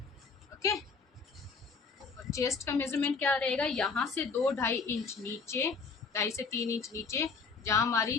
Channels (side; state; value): right; quieter; 4.9 dB